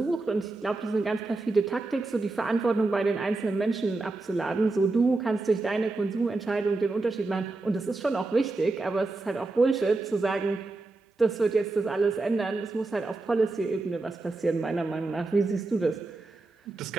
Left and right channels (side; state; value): left; quieter; 3.3 dB